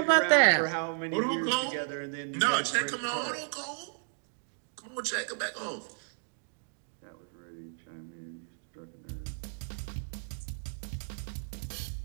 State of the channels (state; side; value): silent; left; digital silence